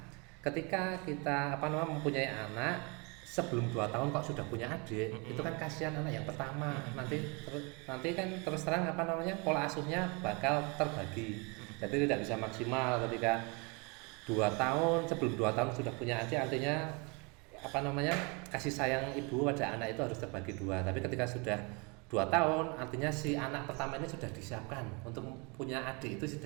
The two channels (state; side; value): quieter; left; 30.8 dB